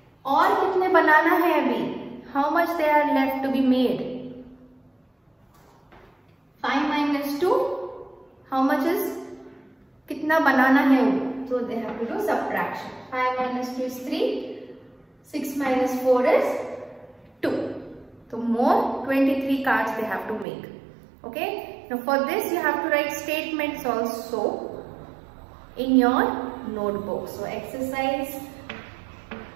और कितने बनाना है अभी? How much they are left to be made? 5 minus 2. How much is? कितना बनाना है वो? So they have to do subtraction. 5 minus 2 is 3. 6 minus 4 is 2. So more 23 cards they have to make. Okay. Now for this you have to write statements also in your notebook. So exercise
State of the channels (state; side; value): drops out; left; at 20.5 s